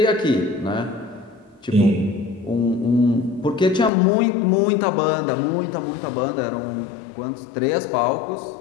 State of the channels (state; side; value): drops out; right; at 3.9 s